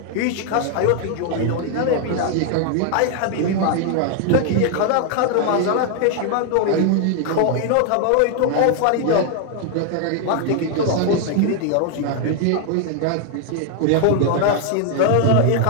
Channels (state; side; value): different; both; correlation 0.00